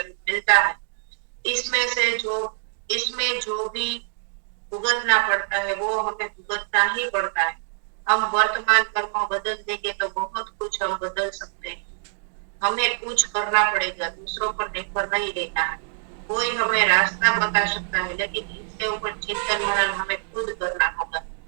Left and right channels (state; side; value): silent; left; 62 dB below the other